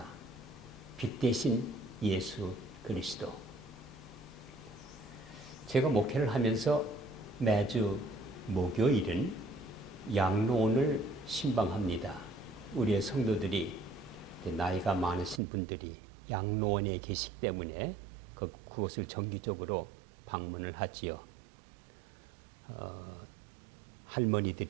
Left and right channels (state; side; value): drops out; left; at 15.4 s